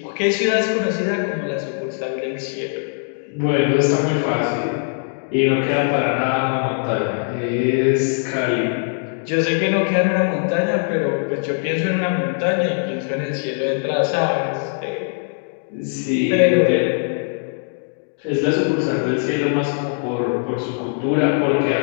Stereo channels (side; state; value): right; silent; 58 dB below the other